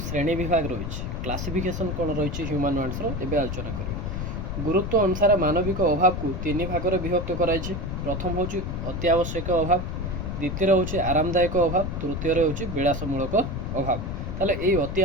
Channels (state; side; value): noise; left; rumble, 4 dB below the sound